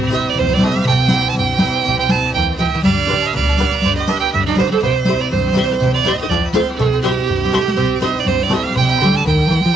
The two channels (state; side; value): normal; both; correlation 0.78